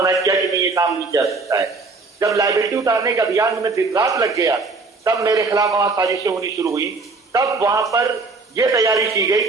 किया कि नहीं, ये काम नहीं किया सकता है। जब लायबिलिटी उतारने का अभियान में दिन रात लग गया, तब मेरे खिलाफ वहां साजिशें होनी शुरू हुई। तब वहां पर यह तैयारी की गई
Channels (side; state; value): left; quieter; 3.9 dB